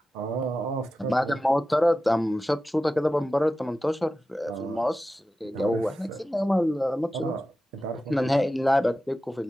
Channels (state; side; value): normal; both; correlation 0.93